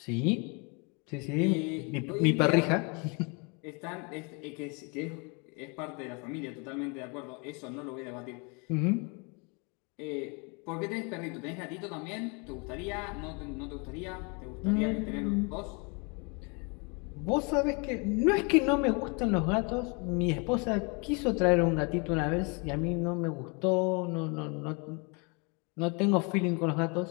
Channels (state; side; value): quieter; right; 32.4 dB